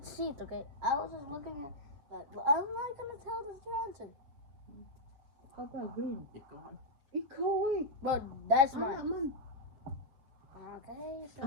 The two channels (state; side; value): late; left; 7.5 ms